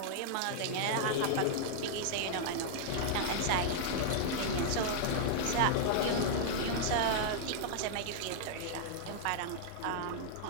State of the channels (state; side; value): different; both; correlation -0.01